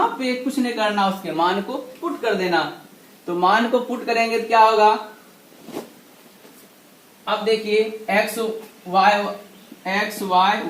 पे कुछ नहीं करना, उसके मान को पुट कर देना। तो मान को पुट करेंगे तो क्या होगा, अब देखिए x y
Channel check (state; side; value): identical; both; correlation 1.00